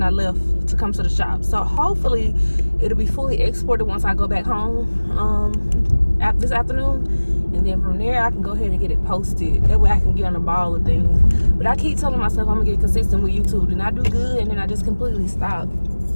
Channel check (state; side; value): inverted; both; correlation -1.00